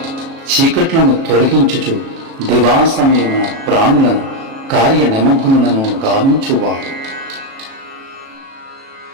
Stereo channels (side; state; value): left; late; 37 ms